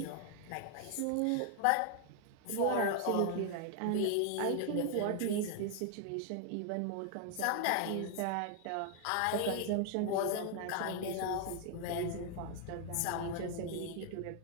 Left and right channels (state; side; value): different; both; correlation 0.00